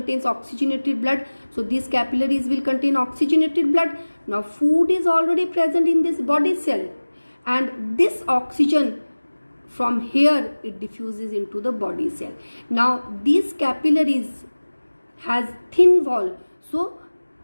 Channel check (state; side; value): inverted; both; correlation -1.00